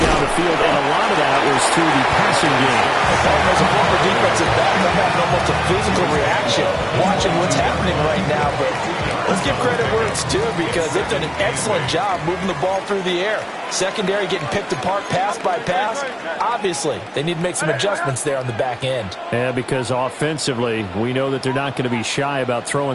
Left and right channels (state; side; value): identical; both; correlation 1.00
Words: the field, and a lot of that was through the passing game. As a former defensive back, I'm having almost a physical reaction watching what's happening right now. But let's give credit where it's due, because they've done an excellent job moving the ball through the air. Secondary getting picked apart pass by pass. Obviously, they need to make some adjustments there on the back end. Yeah, because offensively, we know that they're not going to be shy about throwing